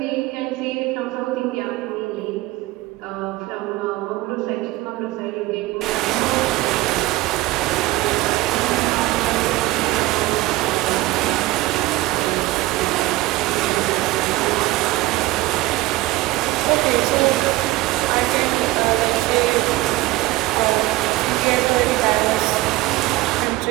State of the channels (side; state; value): left; quieter; 18.1 dB